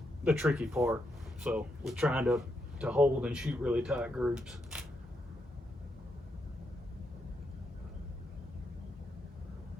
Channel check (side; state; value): both; normal; correlation 0.81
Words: tricky part. So we're trying to hold and shoot really tight groups.